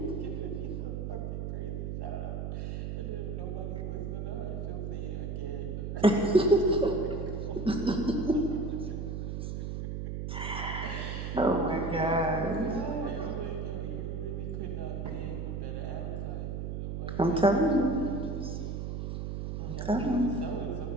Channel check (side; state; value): right; noise; hum, 3 dB below the sound